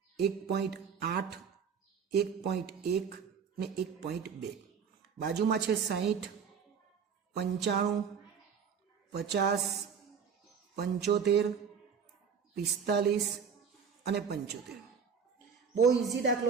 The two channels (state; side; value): quieter; left; 6.7 dB